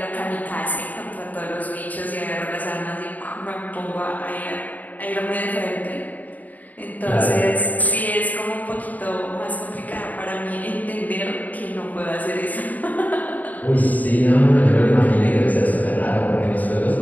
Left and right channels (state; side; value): late; right; 0.078 ms